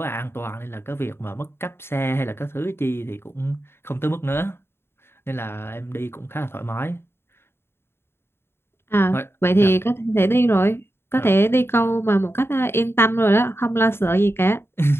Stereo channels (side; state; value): right; late; 0.11 ms